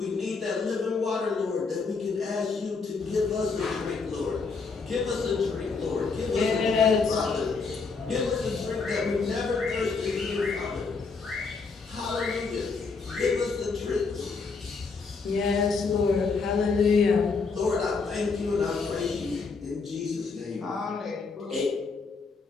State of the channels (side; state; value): right; quieter; 4.6 dB